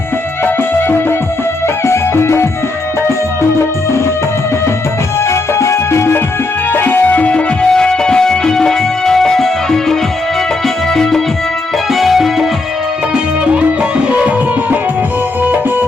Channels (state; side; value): quieter; right; 3.1 dB